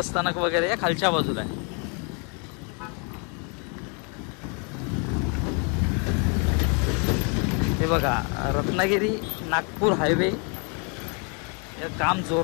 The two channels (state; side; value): quieter; right; 36.1 dB